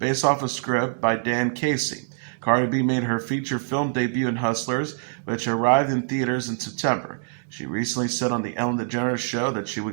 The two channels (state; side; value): silent; left; digital silence